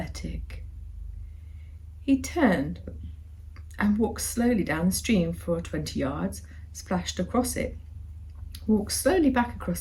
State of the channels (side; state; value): both; identical; correlation 1.00